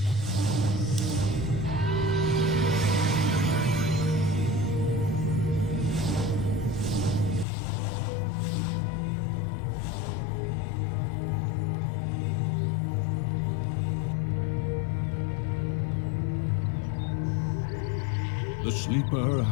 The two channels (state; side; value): drops out; right; at 7.5 s